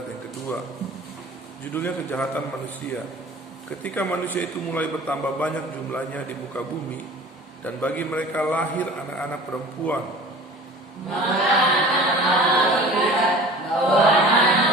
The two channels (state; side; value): normal; both; correlation 0.42